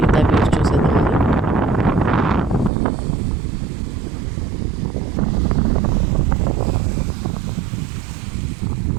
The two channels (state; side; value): drops out; left; at 2.7 s